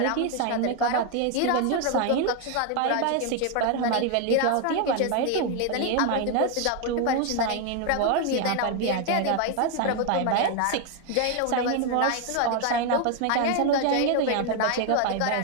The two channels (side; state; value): both; different; correlation 0.01